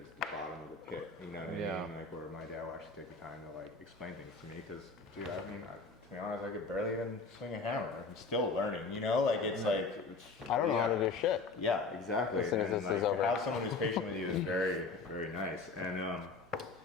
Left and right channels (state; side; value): quieter; right; 4.1 dB